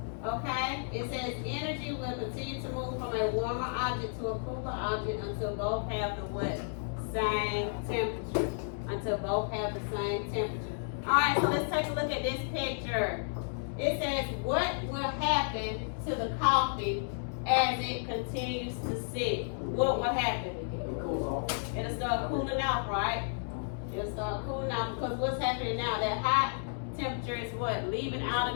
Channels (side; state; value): right; silent; digital silence